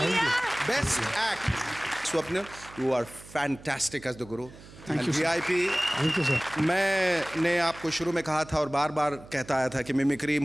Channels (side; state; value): right; noise; hum, 19 dB below the sound